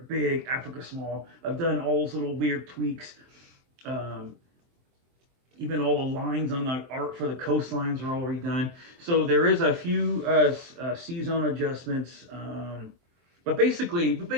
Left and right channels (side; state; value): left; late; 23 ms